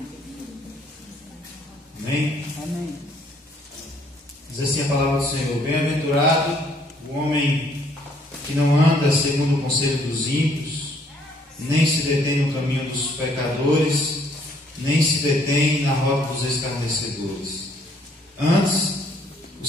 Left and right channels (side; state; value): both; normal; correlation 0.65